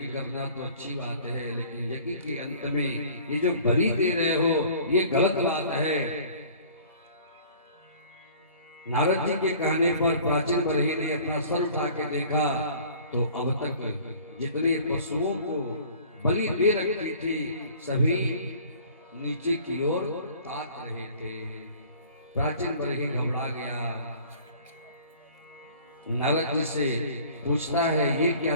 करना तो अच्छी बात है, लेकिन यज्ञ के अंत में ये जो बलि दे रहे हो ये गलत बात है। नारद जी के कहने पर प्राचीन बरही ने अपना सर उठा के देखा तो अब तक जितने पशुओं को बलि दे रखी थी सभी नीचे की ओर ताक रहे थे। प्राचीन बरही घबरा गया। नारद जी से पूछता है, ये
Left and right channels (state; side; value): inverted; both; correlation -0.49